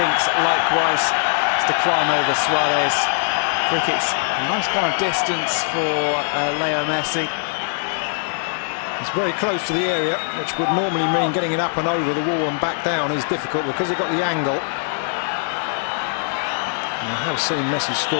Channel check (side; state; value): right; silent; 58 dB below the other